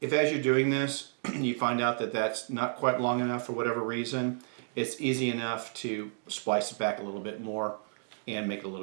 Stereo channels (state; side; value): silent; left; digital silence